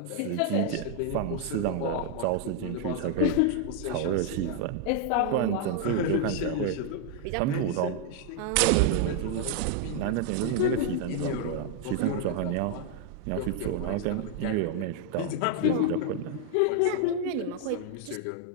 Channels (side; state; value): both; different; correlation 0.00